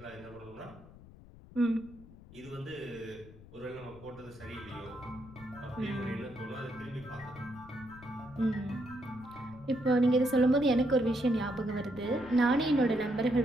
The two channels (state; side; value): noise; left; rumble, 19 dB below the sound